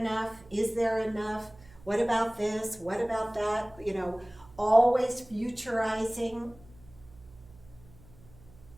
Is there enough? What about this? What about that? You know, always futurizing.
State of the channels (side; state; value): right; noise; hum, 23 dB below the sound